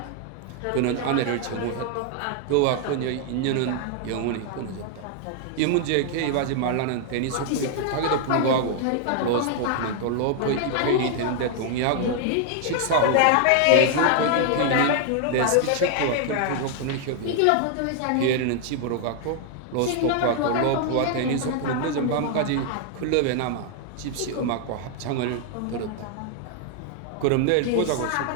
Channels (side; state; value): both; different; correlation 0.00